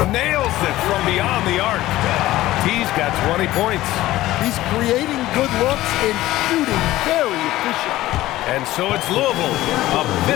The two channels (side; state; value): right; quieter; 16.1 dB